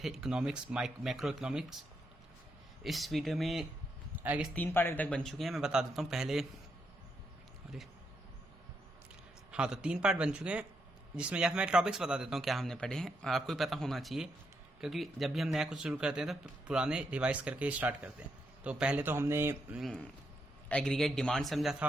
इकोनॉमिक्स, मैक्रो इकोनॉमिक्स। इस वीडियो में आगे 3 पार्ट अभी तक बन चुके हैं। मैं बता देता हूँ पहले। अरे हाँ, तो 3 पार्ट बन चुके हैं, जिसमें या फिर मैं टॉपिक्स बता देता हूँ क्या हमने पढ़े हैं। आपको भी पता होना चाहिए, क्योंकि जब भी हम नया कुछ शुरू करते हैं तो पुराने रिवाइज करके स्टार्ट करते हैं। तो पहले तो हमने एग्रीगेट डिमांड समझा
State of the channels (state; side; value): normal; both; correlation 0.80